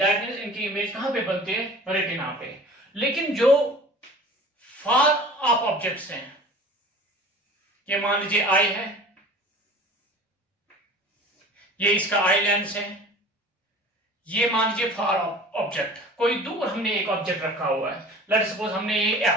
means इनकी इमेज कहां पे बनती है, रेटिना पे। लेकिन जो फार ऑफ ऑब्जेक्ट्स हैं, ये मान लीजिए आई है, ये इसका आई लेंस है, ये मान लीजिए फार ऑब्जेक्ट, कोई दूर हमने एक ऑब्जेक्ट रखा हुआ है, लेट्स सपोज हमने ये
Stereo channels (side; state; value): both; normal; correlation 0.42